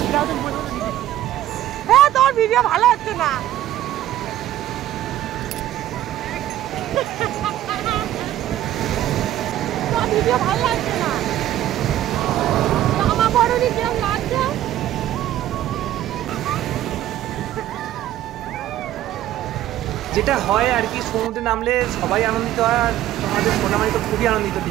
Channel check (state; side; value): quieter; left; 13.2 dB